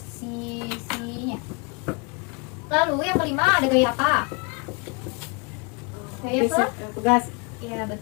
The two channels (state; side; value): quieter; right; 32.7 dB